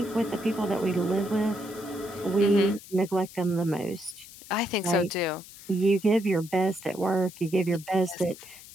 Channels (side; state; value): left; noise; hiss, 18 dB below the sound